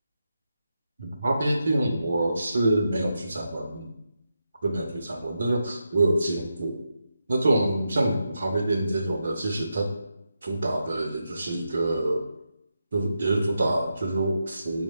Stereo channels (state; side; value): inverted; both; correlation -0.86